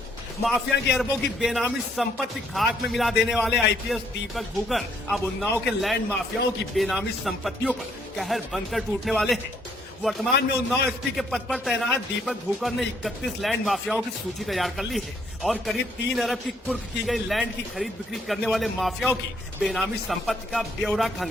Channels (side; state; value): both; normal; correlation 0.68